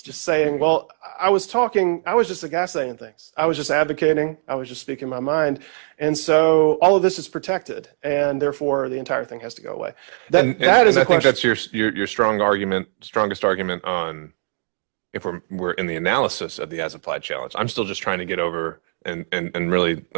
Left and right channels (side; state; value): left; silent; digital silence